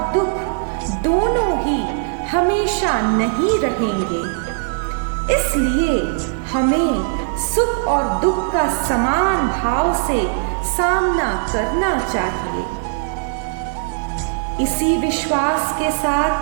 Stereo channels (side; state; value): left; silent; digital silence